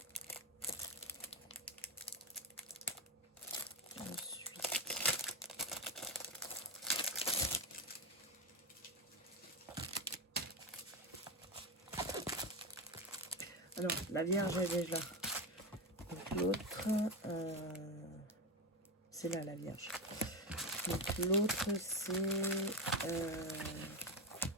Alors, la Vierge, elle est là. Donc l'autre, c'est là la Vierge. Donc l'autre,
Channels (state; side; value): normal; both; correlation 0.14